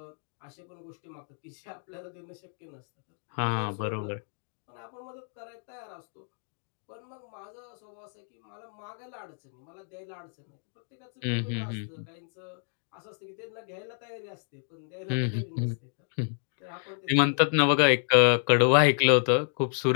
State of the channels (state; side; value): silent; right; digital silence